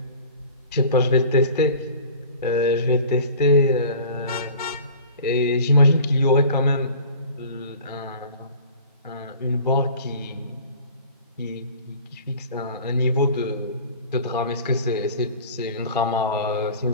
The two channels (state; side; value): inverted; both; correlation -0.43